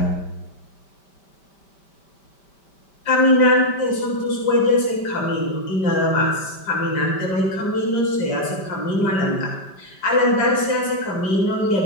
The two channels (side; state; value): right; late; 5.1 ms